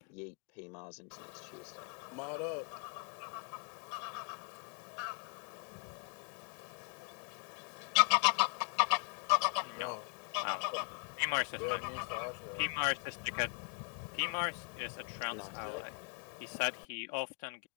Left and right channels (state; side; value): quieter; right; 38.8 dB